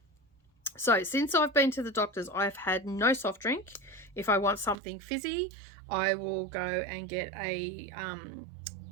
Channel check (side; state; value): left; drops out; at 4.8 s